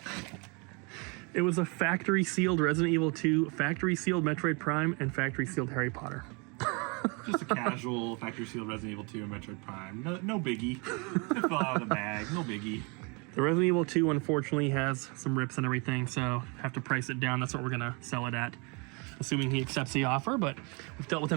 It was a factory sealed Resident Evil 2, factory sealed Metroid Prime, and factory sealed Harry Potter. Just a casual factory sealed Resident Evil 2 and Metroid Prime. No biggie. It fell out of the bag. No biggie. The Resident Evil 2 unfortunately has some rips and everything, so have to price it down. That's what we're gonna sell it at, assuming he accepts the offer. But we've dealt with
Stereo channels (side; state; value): left; quieter; 31.4 dB